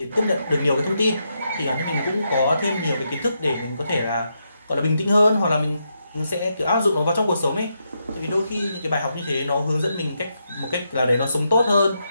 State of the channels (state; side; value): inverted; both; correlation -0.82